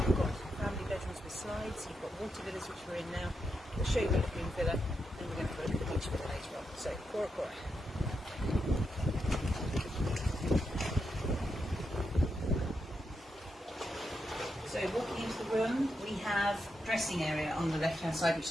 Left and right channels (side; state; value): both; normal; correlation 0.84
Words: got family bedrooms with slides, you've got water villas, which we're in now. We'll show you the Lagoon Villa, and we're going to have a look at the beach villa later on. So, Cora Cora. So walking into the room, we have dressing area on the left hand side,